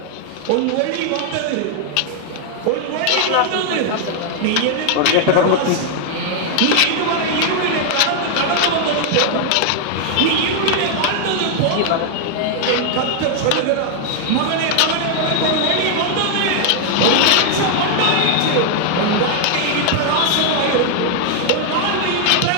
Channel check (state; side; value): different; both; correlation 0.00